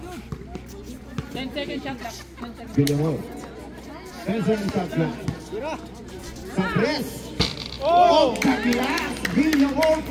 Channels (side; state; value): both; identical; correlation 1.00